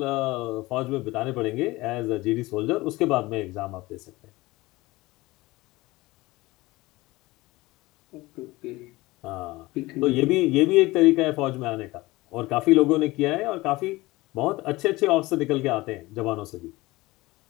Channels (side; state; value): right; quieter; 20.4 dB